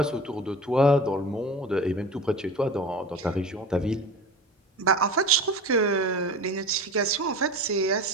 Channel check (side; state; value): both; normal; correlation 0.34